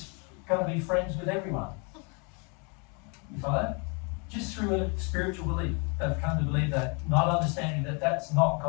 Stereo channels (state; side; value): quieter; right; 34.2 dB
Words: going to be friends with everyone. You follow? Just through a spiritual belief. They've come to believe that, not understanding that that's not